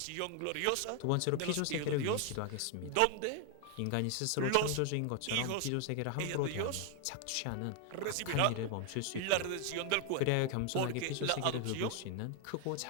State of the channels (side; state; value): both; different; correlation 0.00